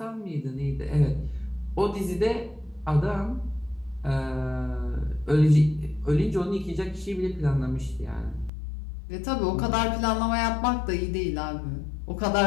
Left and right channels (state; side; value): drops out; right; at 8.5 s